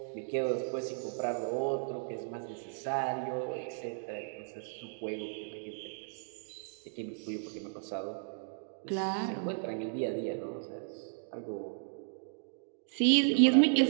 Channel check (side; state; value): left; silent; digital silence